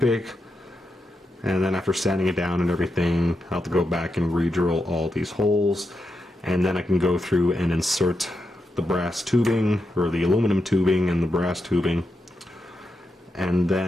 and then after sanding it down and everything I'll have to go back and re-drill all these holes, and then I can go through and insert the brass tubing, or the aluminum tubing and the brass tubing, and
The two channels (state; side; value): normal; both; correlation 0.86